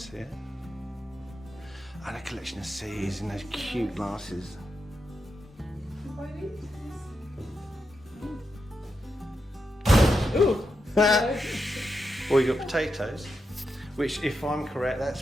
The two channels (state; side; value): normal; both; correlation 0.86